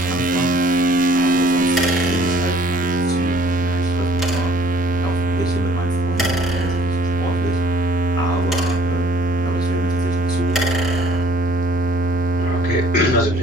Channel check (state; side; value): noise; left; rumble, 17 dB below the sound